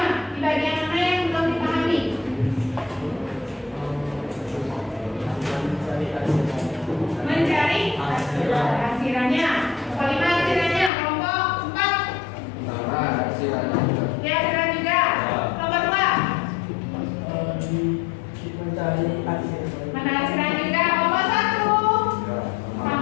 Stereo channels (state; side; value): drops out; right; at 10.9 s